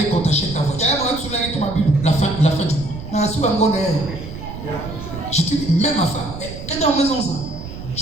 qu'on t'achète ta voiture. La fin du mois. Je te dis, même ma femme.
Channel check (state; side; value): noise; right; rumble, 11 dB below the sound